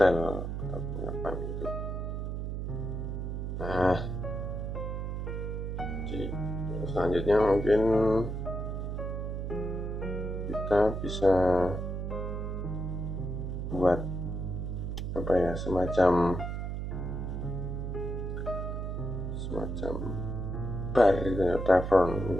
atau apa gitu. Nah, jadi selanjutnya mungkin kita bisa buat apa ya, semacam bar gitu ya, tavern,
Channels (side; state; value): right; noise; hum, 3 dB below the sound